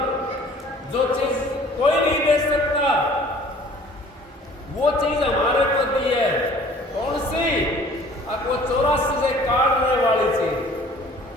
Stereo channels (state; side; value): normal; both; correlation 0.51